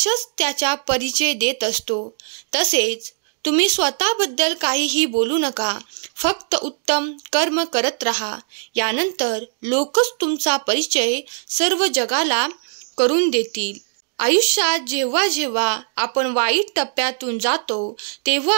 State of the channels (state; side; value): silent; left; digital silence